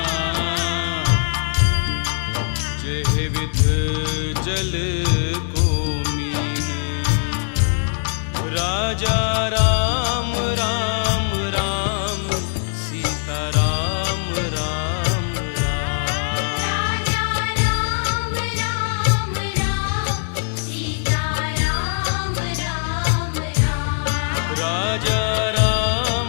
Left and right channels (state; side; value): silent; right; digital silence